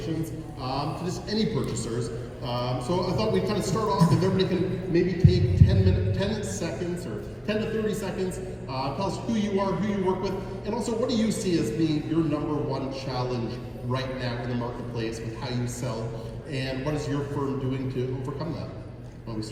to just any purchasers. So I thought we'd kind of start off, if everybody can maybe take 10 seconds or 10 to 30 seconds, tell us who you are, who you work with, and also what do you see as being your number one challenge right now in the marketplace with how you sell, and what is your firm doing to overcome that? Well, we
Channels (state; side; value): identical; both; correlation 1.00